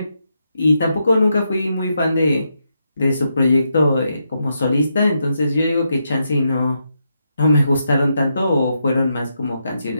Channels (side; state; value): both; inverted; correlation -0.82